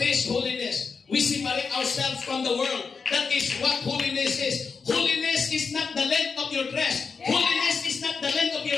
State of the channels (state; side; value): quieter; right; 5.2 dB